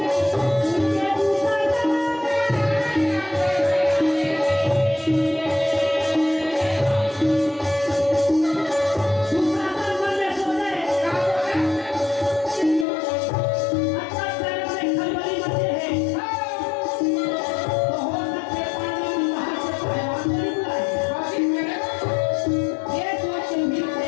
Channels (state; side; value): drops out; right; at 12.9 s